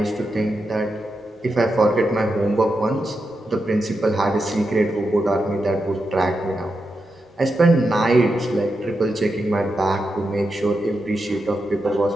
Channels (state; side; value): normal; both; correlation 0.87